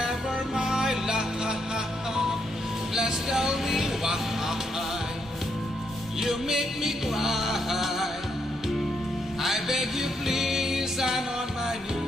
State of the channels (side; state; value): both; normal; correlation 0.77